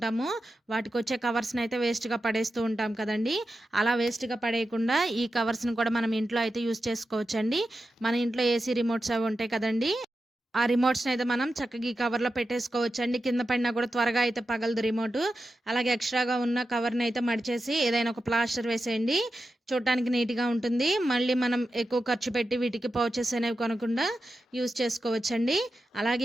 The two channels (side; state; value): both; normal; correlation 0.91